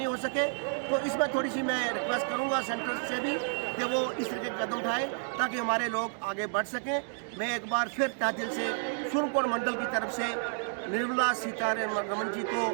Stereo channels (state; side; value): silent; left; digital silence